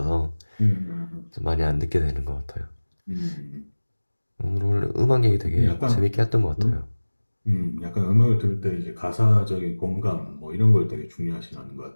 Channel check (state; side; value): inverted; both; correlation -1.00